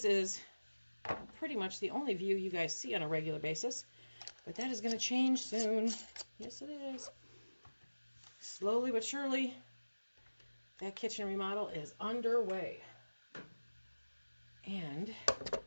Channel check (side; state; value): both; inverted; correlation -1.00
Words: is pretty much the only view you guys see on a regular basis, but that is going to change soon. Yes, it is. Slowly but surely, that kitchen remodel is underway. And